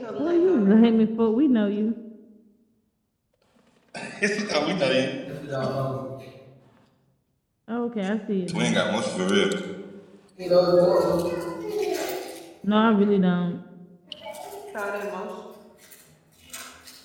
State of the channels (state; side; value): identical; both; correlation 1.00